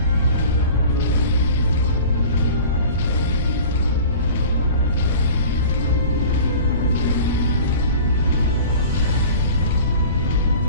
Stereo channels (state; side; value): inverted; both; correlation -0.41